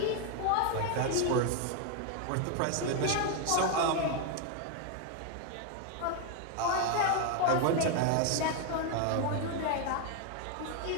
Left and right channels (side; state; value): both; different; correlation 0.01